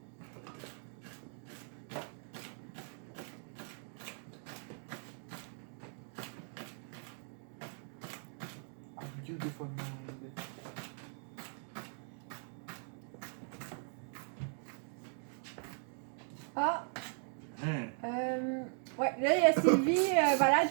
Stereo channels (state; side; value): silent; left; 52 dB below the other